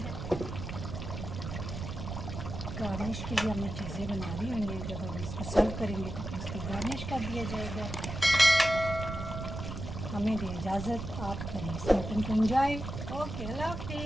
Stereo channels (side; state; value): right; noise; rumble, 6 dB below the sound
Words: गार्निश के लिए हमने चीज़ें बना ली हुई हैं। जब हम इसको सर्व करेंगे तो इसको गार्निश कर दिया जाएगा। हमें दे इजाज़त, आप करें इस मटन को एंजॉय। ओके, अल्लाह